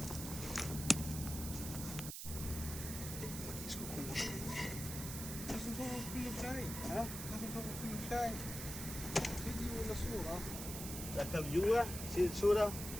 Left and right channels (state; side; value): noise; right; hiss, 7 dB below the sound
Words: لازم تصور كله شاي. ها؟ لازم تصور كله شاي. فيديو ولا صورة؟ ركب جوا شيل صورة.